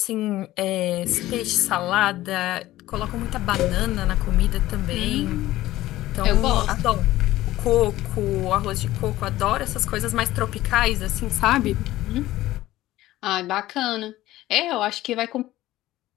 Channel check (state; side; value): quieter; right; 15.8 dB